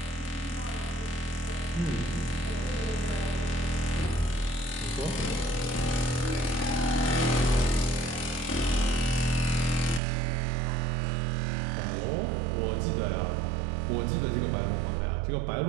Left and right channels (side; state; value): left; drops out; at 10.0 s